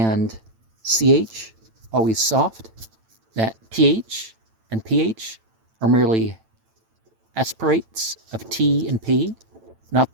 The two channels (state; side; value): late; left; 9.0 ms